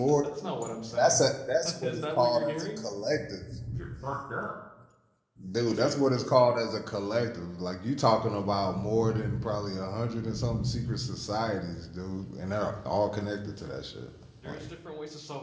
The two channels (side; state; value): both; identical; correlation 1.00